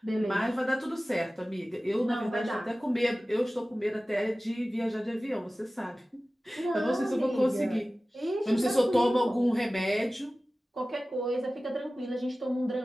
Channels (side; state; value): both; normal; correlation 0.96